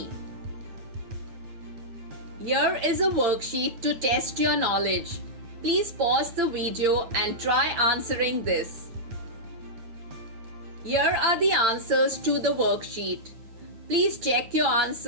Here is a worksheet to test your knowledge. Please pause the video and try answering this. Here are the answers to the worksheet. Please check your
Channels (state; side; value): late; left; 8.8 ms